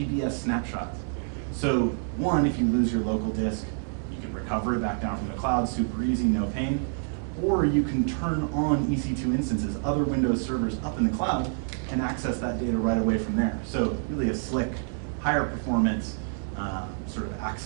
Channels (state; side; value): silent; left; 60 dB below the other